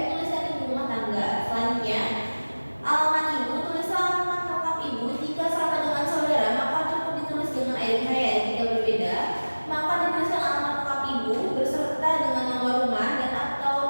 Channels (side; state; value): both; inverted; correlation -1.00